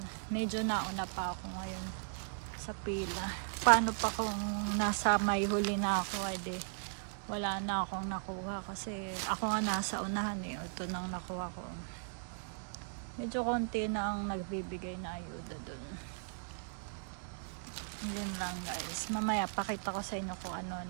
Medyo nauna pa ako ngayon sa pila. Paano pa kung nasa may huli na ako, edi wala na akong nakuha kasi ako nga nasa unahan eh. Ito nang nakuha ko. Medyo konti na ang nagbibigay na ayuda dun. Yun lang guys. Mamaya pakita ko sa inyo kung ano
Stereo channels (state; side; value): silent; left; digital silence